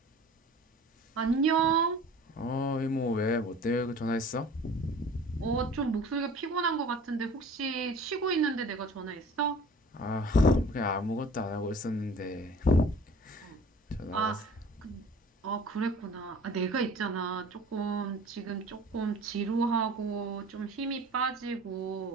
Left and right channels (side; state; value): both; normal; correlation 0.45